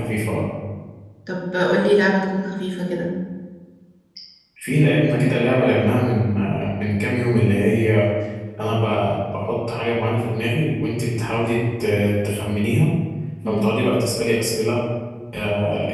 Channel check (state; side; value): identical; both; correlation 1.00